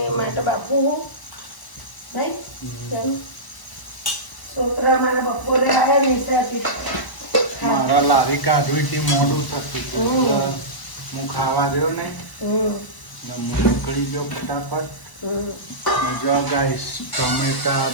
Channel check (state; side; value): late; right; 1.0 ms